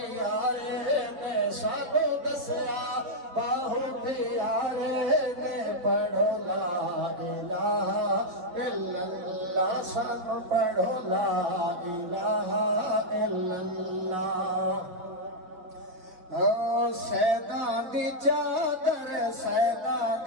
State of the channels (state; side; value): late; left; 5.8 ms